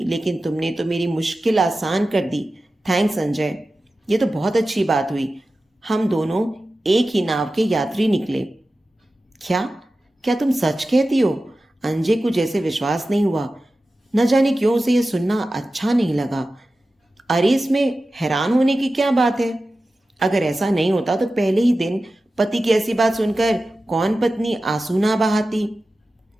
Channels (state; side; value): normal; both; correlation 0.94